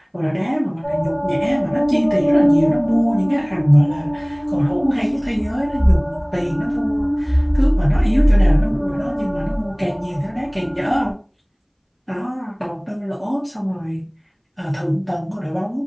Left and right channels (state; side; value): identical; both; correlation 1.00